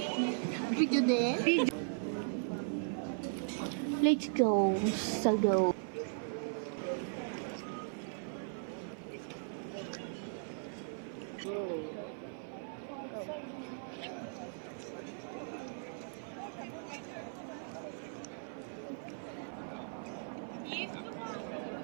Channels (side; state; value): left; silent; 52 dB below the other